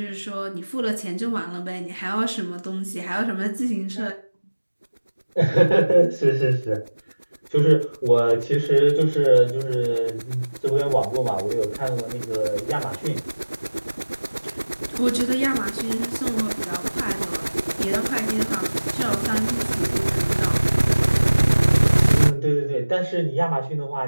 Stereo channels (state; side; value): inverted; both; correlation -1.00